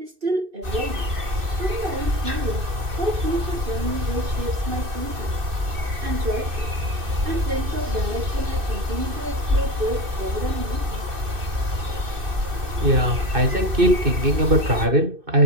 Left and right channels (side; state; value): left; late; 2.6 ms